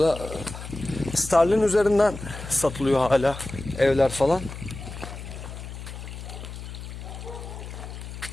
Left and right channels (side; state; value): left; noise; hum, 10 dB below the sound